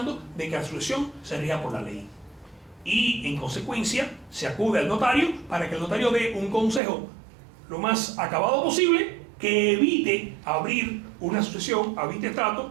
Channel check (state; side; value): drops out; left; at 6.8 s